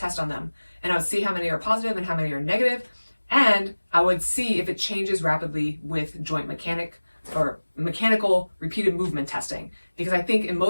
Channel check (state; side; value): inverted; both; correlation -1.00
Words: on them. And I would see how many are positive and how many are negative, and I would see if it changes rapidly with joint mechanic or mechanical repeated movement testing. Because I think in